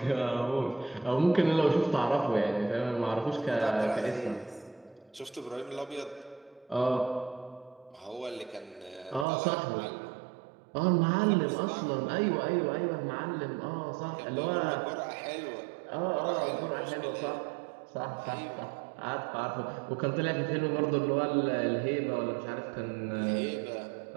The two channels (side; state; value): left; drops out; at 9.2 s